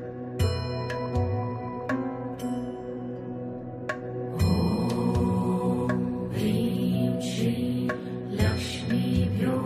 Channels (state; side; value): identical; both; correlation 1.00